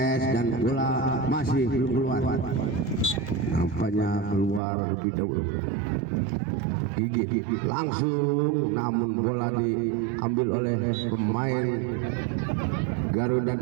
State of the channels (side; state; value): left; drops out; at 4.6 s